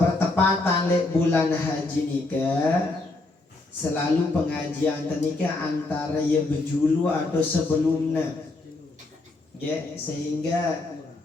lek bulan haji nikah, selalu pengajian nikah antara ya berjulu atau sebelumnya, ya, sehingga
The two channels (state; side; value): quieter; right; 3.1 dB